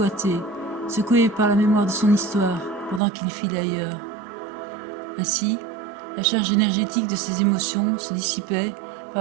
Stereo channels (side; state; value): left; drops out; at 3.0 s